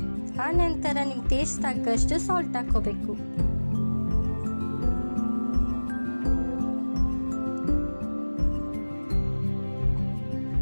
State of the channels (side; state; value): both; inverted; correlation -1.00